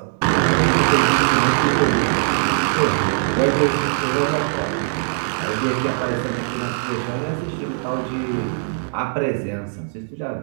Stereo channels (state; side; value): silent; left; digital silence